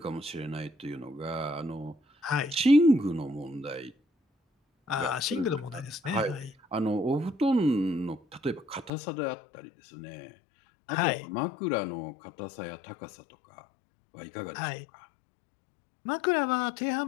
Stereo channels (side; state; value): right; drops out; at 8.9 s